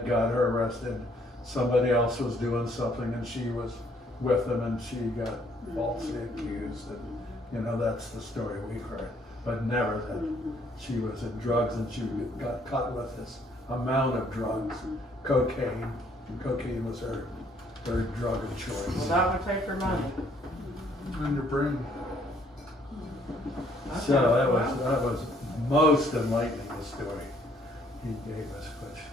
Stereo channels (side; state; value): both; normal; correlation 0.64